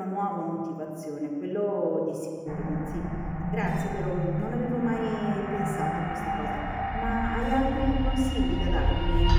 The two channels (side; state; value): both; identical; correlation 1.00